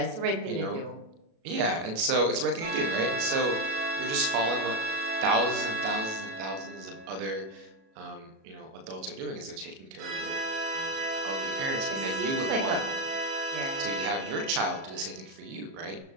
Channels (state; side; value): late; left; 37 ms